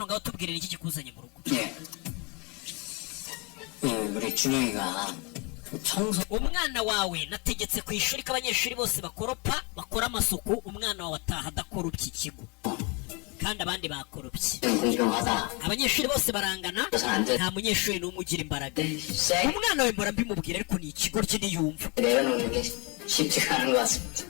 ngaho tubwirira iki kikuzanye mu rugo 예. 우리 준영이가 청소 umwana wawe nategetse ku ishuri ko abanyeshuri bose bakoropa bakora amasuku umwana wawe ataha adakorupye ikigo kandi abandi bakorupye 공평하다. abanyeshuri bose barangana nta munyeshuri n'umwe ugira imbaraga 쌩 umwana we mbora mbimubwira ariko ni ikigo rye ntiyumva 내려놓는 게 쉽지가 않은 것 같습니다.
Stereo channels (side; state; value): right; quieter; 30.1 dB